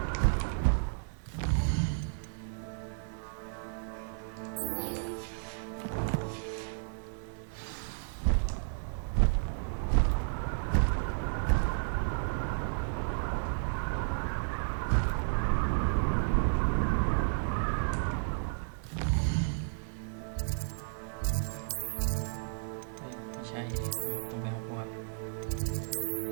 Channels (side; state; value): left; silent; digital silence